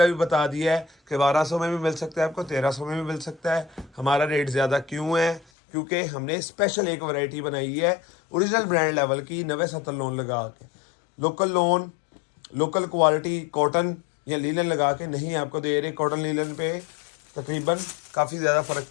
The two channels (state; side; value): drops out; right; at 5.5 s